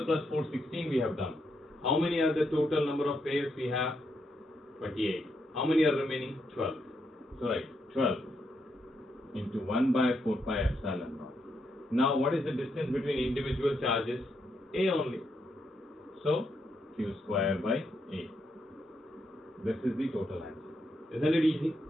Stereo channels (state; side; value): normal; both; correlation 0.79